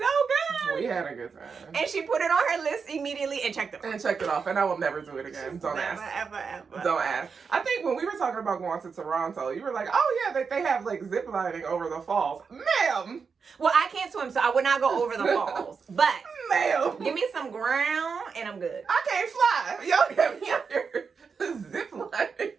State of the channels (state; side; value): quieter; left; 5.6 dB